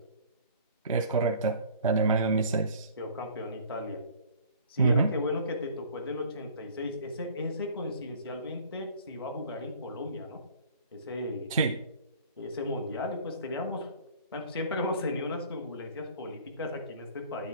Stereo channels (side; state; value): both; inverted; correlation -0.49